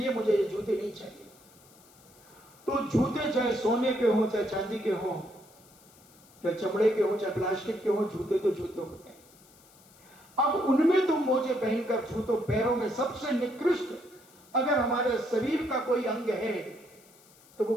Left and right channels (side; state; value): left; noise; hiss, 26 dB below the sound